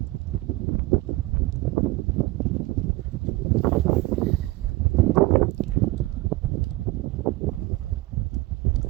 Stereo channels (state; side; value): quieter; left; 20.4 dB